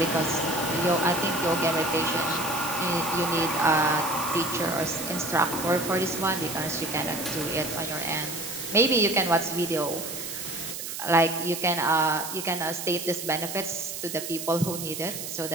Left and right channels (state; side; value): noise; right; hiss, 7 dB below the sound